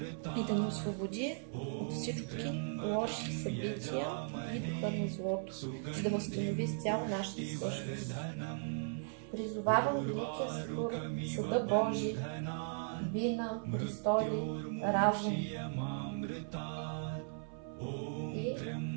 и да ни освободи от всички лоши събития и духа на злото, за да възстанови изцяло нашата същност. Призовавам великия Сатурн, Съда Божий, вина, престоли, разум и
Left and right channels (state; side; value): silent; left; 53 dB below the other